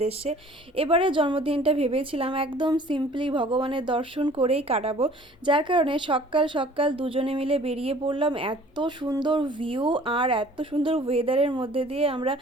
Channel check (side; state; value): both; normal; correlation 0.51